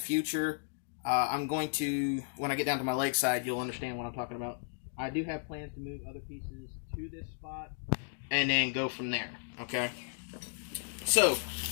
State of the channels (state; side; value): silent; right; digital silence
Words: I'm going to, when I get down to my leg side, you'll understand what I'm talking about. I do have plans to move other pieces to this spot and then go from there, okay? So,